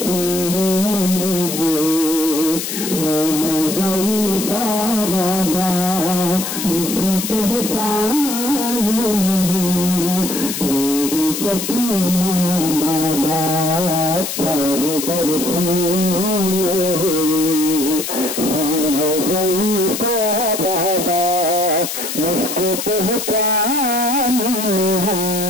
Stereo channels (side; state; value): left; noise; hiss, 5 dB below the sound